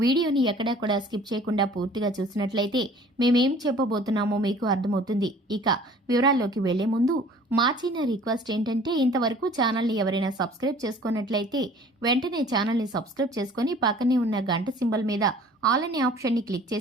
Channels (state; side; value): normal; both; correlation 0.50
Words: వీడియోని ఎక్కడా కూడా స్కిప్ చేయకుండా పూర్తిగా చూసినట్లయితే మేమేం చెప్పబోతున్నామో మీకు అర్థమవుతుంది. ఇక వివరాల్లోకి వెళ్లే ముందు మా చిన్న రిక్వెస్ట్ ఏంటంటే, ఇంతవరకు ఛానల్ని ఎవరైనా సబ్స్క్రైబ్ చేసుకున్నట్లయితే వెంటనే ఛానల్ని సబ్స్క్రైబ్ చేసుకుని పక్కనే ఉన్న గంట సింబల్ మీద ఆల్ అనే ఆప్షన్ని క్లిక్